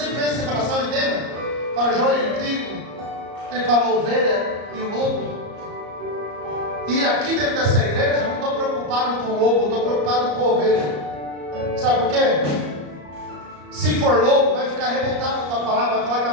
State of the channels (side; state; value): left; late; 34 ms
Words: penso em separação, entenda? Para joio e trigo. Ele fala ovelha e o lobo. E aqui dentro dessa igreja, eu não estou preocupado com o lobo, eu estou preocupado com a ovelha. Sabe por quê? Se for lobo, vai ficar revoltado com a palavra, vai falar que a